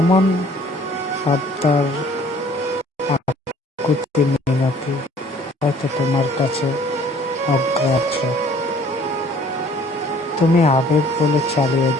আবদার, আকুতি মিনতি হয়তো তোমার কাছে অগ্রাহ্য। তুমি আবেগ বলে চালিয়ে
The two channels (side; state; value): both; normal; correlation 0.55